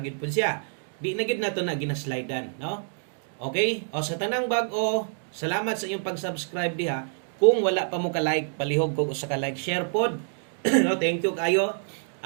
pud siya. Di na gid nato na ginaslidean, no? Okay? O sa tanang bag-o, salamat sa inyong pag-subscribe diha. Kung wala pa mo ka-like, palihog ko sa ka-like, share pod. No, thank you kayo.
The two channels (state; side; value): silent; left; digital silence